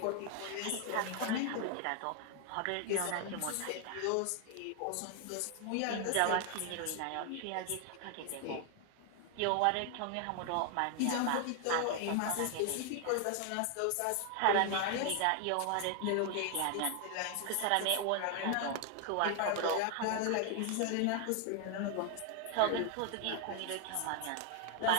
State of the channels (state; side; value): different; both; correlation 0.00